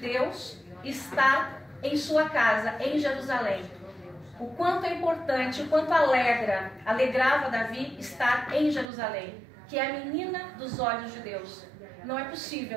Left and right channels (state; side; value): drops out; left; at 8.8 s